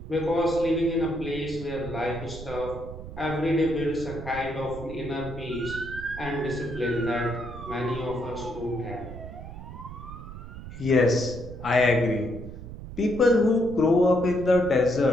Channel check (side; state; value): right; noise; rumble, 12 dB below the sound